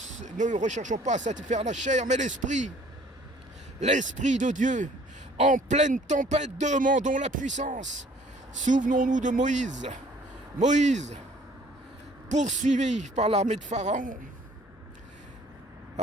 recherchons pas à satisfaire la chair, mais l'esprit de Dieu. En pleine tempête, demandons la puissance. Souvenons-nous de Moïse. Moïse, poursuivi par l'armée de Pharaon,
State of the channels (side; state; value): both; normal; correlation 0.56